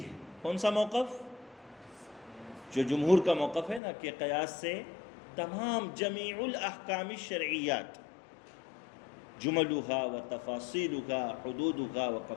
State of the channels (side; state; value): right; drops out; at 3.8 s